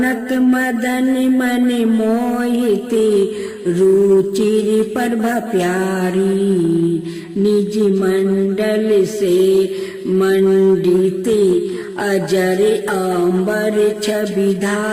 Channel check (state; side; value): identical; both; correlation 1.00